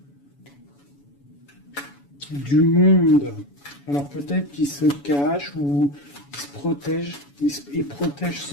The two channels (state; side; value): late; right; 7.0 ms